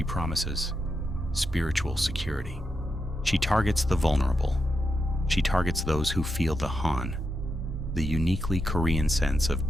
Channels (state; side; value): normal; both; correlation 0.86